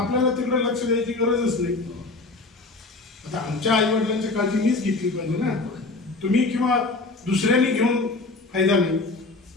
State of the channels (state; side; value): quieter; right; 3.4 dB